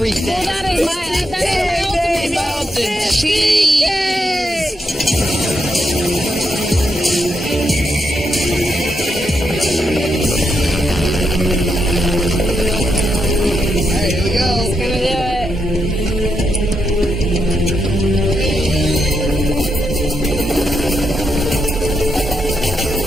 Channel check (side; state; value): both; normal; correlation 0.82